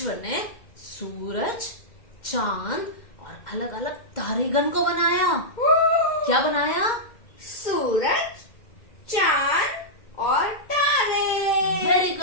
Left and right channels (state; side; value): late; right; 2.1 ms